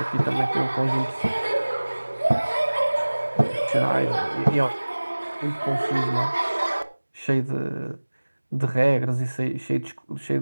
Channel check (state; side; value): inverted; both; correlation -1.00